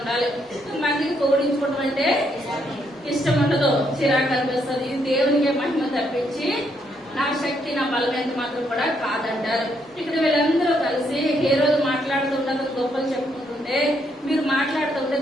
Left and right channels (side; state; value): both; normal; correlation 0.74